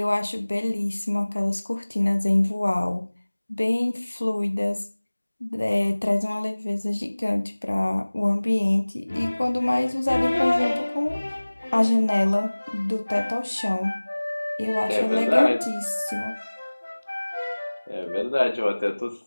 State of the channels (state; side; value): inverted; both; correlation -1.00